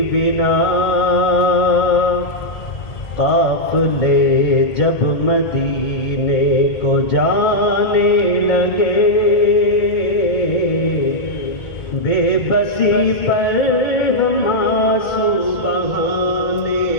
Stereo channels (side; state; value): right; late; 1.8 ms